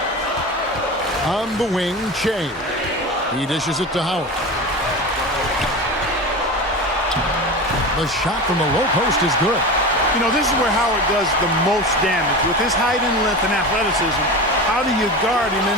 On the wing, Shea. He dishes it to Howard. The shot from the low post is good. You know, this is where Howard does the most damage. With his height and length and athleticism, how do you guard him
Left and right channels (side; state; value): both; normal; correlation 0.28